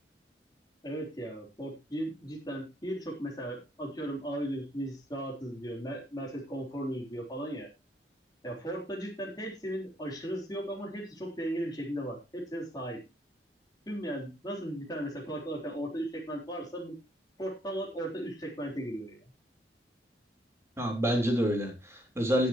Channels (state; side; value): normal; both; correlation 0.70